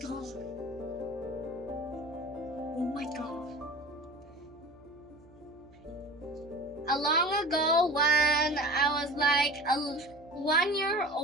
Oh my god. A long ago when I was like 1 year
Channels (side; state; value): right; noise; hum, 27 dB below the sound